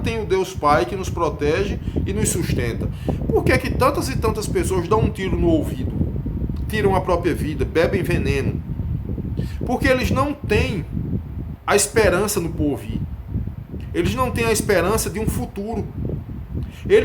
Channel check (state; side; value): identical; both; correlation 1.00